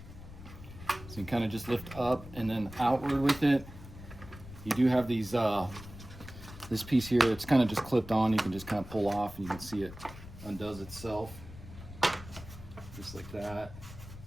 So you kind of just lift up and then outward with it. You do have these, this piece here, it's kind of just clipped on. You can just kind of pull off and you can see it undoes itself. Just like that.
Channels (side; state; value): left; noise; rumble, 15 dB below the sound